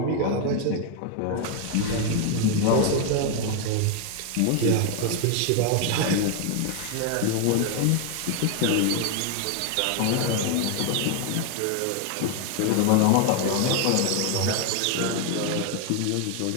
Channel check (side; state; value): both; different; correlation 0.01